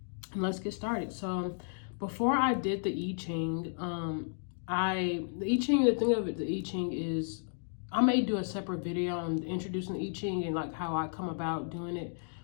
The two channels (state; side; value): silent; right; digital silence